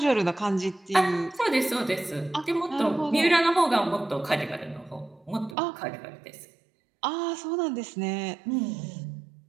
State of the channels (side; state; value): left; drops out; at 5.6 s